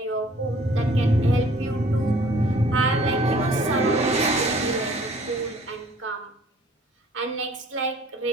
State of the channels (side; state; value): both; normal; correlation 0.55